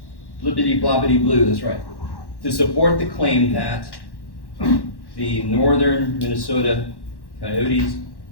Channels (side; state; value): right; late; 1.1 ms